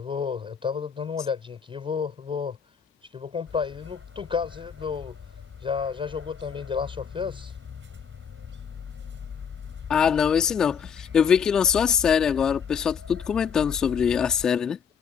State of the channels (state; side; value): quieter; right; 7.0 dB